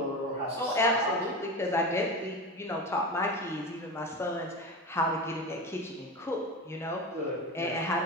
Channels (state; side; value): normal; both; correlation 0.25